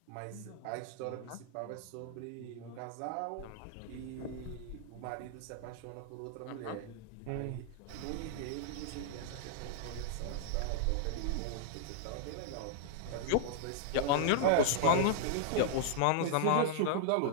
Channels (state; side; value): different; both; correlation -0.01